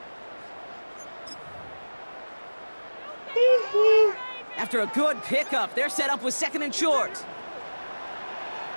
After a good pickup, they're set up with 2nd and short.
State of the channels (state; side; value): inverted; both; correlation -1.00